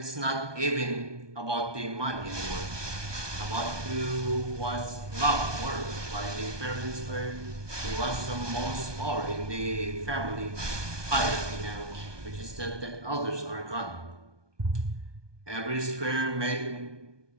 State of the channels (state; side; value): late; left; 1.2 ms